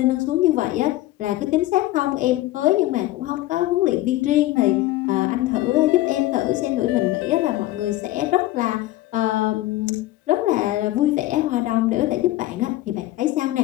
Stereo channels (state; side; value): quieter; right; 16.3 dB